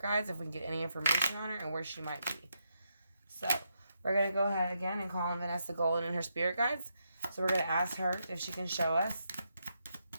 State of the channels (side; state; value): both; inverted; correlation -0.81